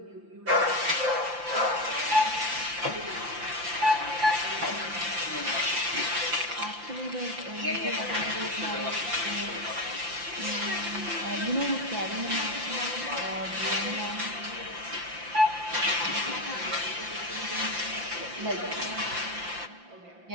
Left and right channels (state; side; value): late; left; 5.8 ms